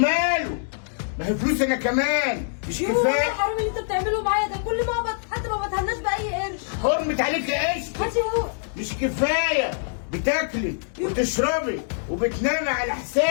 ما هي فلوس انا كمان مش يوم كفايه؟ الحرام اللي انت بتعمله معايا ده، كل ما اقبض حتى ما بتهناش باي قرش. حرمت عليك قشطه. هاتي هو. مش كفايه بتاكلي وتشربي وبتنامي على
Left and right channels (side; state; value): right; silent; digital silence